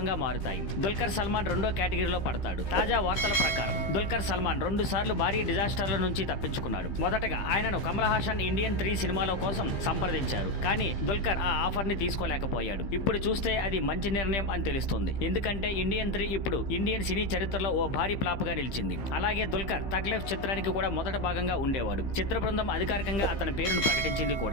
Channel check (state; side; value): late; right; 15 ms